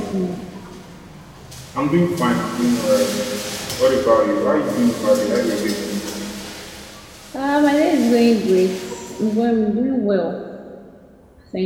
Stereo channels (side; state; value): both; identical; correlation 1.00